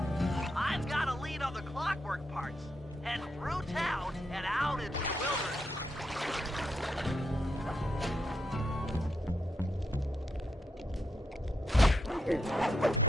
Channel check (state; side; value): normal; both; correlation 0.83